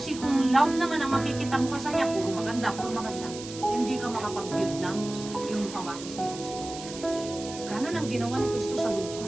kung love naman ang makikita mo sa niya, puro maganda. Hindi ka makapag-build ng yung pawakis ni Kristo. Ganon ang ginawa ni Kristo sa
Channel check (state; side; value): noise; right; hiss, 12 dB below the sound